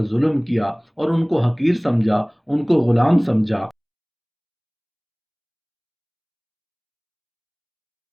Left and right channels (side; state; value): both; identical; correlation 1.00